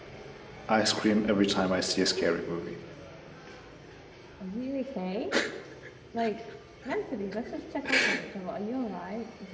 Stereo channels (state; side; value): identical; both; correlation 1.00